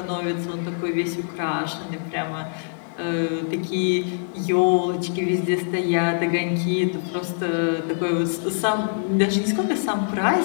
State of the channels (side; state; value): right; silent; digital silence